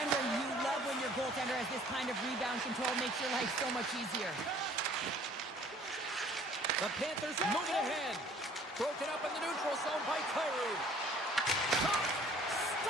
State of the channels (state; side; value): normal; both; correlation 0.55